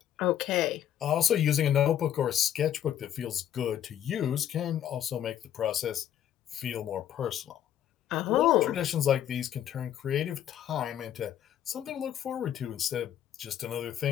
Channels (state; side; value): quieter; right; 10.6 dB